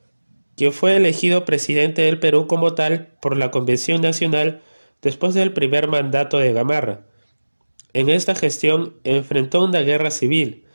quien fue elegido presidente del Perú como tal por la Convención Nacional después del primer mandato de Gamarra. En esta gestión enfrentó una guerra civil,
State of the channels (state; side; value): inverted; both; correlation -1.00